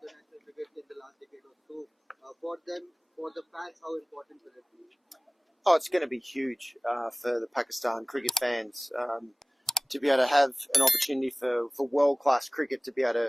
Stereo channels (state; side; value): normal; both; correlation 0.98